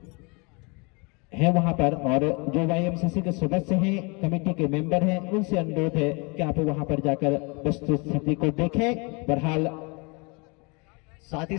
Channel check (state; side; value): quieter; right; 30.3 dB